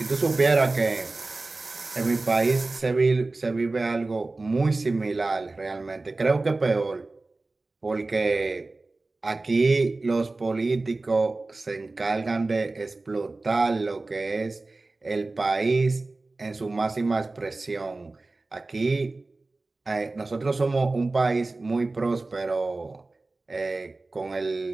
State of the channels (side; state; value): left; quieter; 3.3 dB